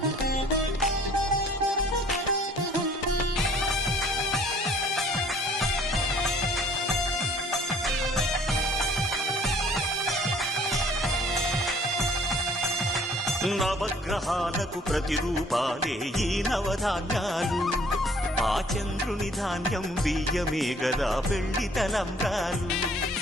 నవగ్రహాలకు ప్రతిరూపాలే ఈ నవధాన్యాలు, ఆ చంద్రుని ధాన్యం బియ్యమే గదా పెళ్లి తలంబ్రాలు.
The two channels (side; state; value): both; normal; correlation 0.57